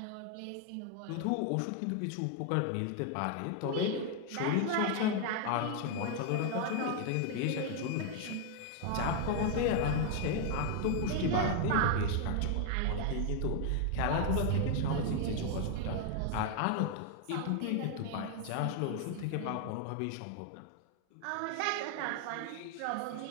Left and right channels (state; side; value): different; both; correlation 0.00